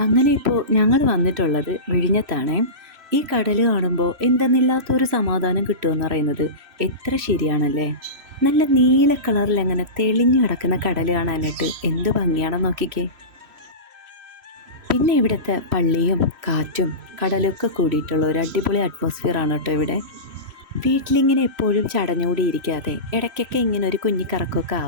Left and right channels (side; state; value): left; late; 3.1 ms